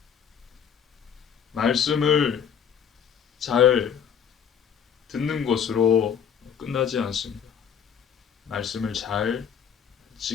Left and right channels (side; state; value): right; quieter; 7.8 dB